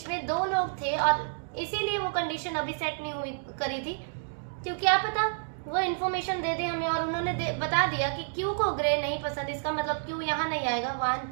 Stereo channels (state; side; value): silent; left; digital silence